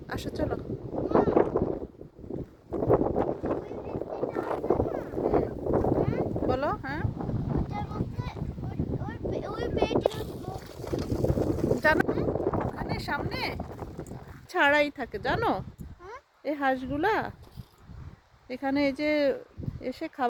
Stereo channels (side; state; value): both; identical; correlation 1.00